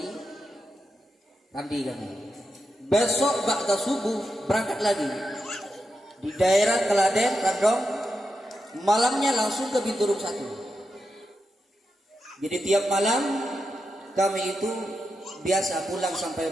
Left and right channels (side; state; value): both; normal; correlation 0.87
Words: Randi kami. Besok ba'da subuh berangkat lagi di daerah Keladen, Radong, malamnya langsung ke Binturung 1. Jadi tiap malam kami itu biasa pulang sampai